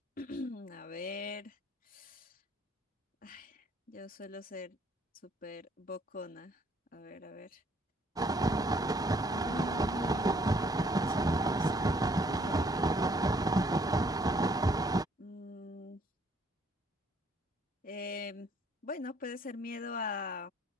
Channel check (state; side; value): normal; both; correlation 0.64